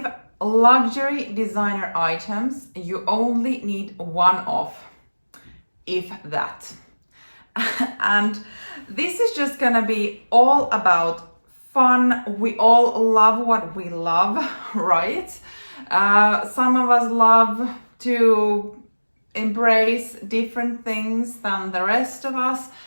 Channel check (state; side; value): inverted; both; correlation -1.00